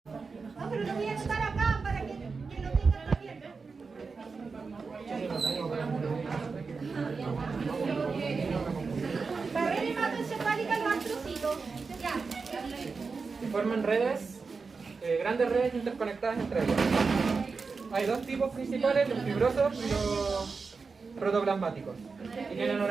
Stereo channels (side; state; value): left; quieter; 4.7 dB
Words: No, pero lo voy a anotar acá para que lo tengan también. Barrera hematoencefálica, los astrocitos. Ya. Forman redes, grandes redes interconectadas entre ellas. Hay dos tipos principales, los fibrosos y los protoplasmáticos, y tienen